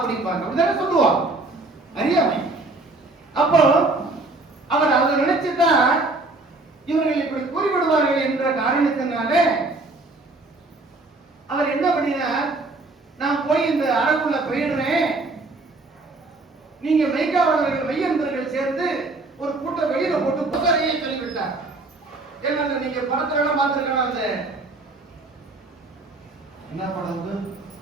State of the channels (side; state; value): left; quieter; 3.2 dB